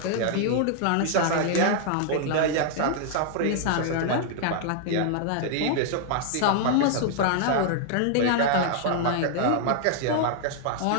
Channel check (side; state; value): both; different; correlation -0.01